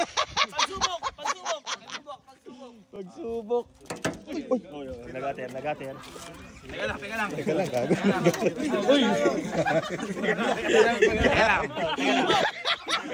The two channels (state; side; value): identical; both; correlation 1.00